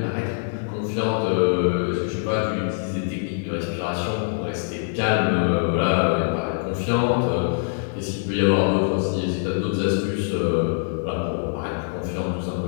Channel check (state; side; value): silent; right; digital silence